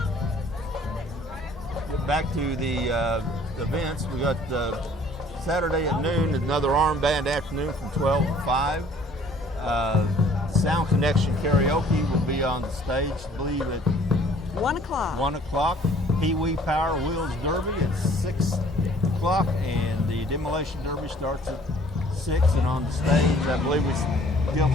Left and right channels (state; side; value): normal; both; correlation 0.56